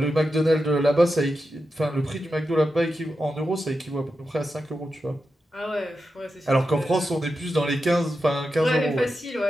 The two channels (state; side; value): normal; both; correlation 0.89